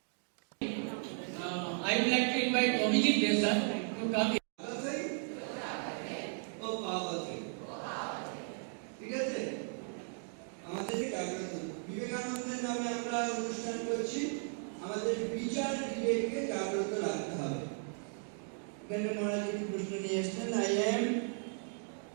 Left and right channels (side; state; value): left; silent; 54 dB below the other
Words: I would like to invite Abhijit Desai to come here. ঠিক আছে, আমাদের বিবেকানন্দের নামে আমরা অনুষ্ঠান করছি। আমাদের বিচার বিবেককে জাগ্রত রাখতে হবে। এখানে মহারাজ একটি প্রশ্ন নিয়ে এসেছেন। I am